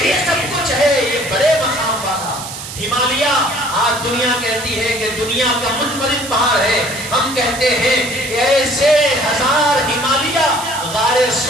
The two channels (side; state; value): right; noise; hiss, 10 dB below the sound